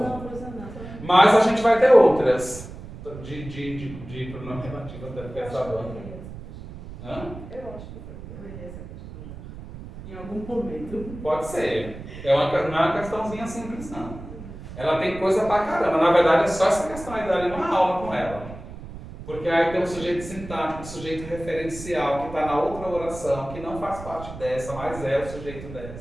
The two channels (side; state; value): right; noise; rumble, 13 dB below the sound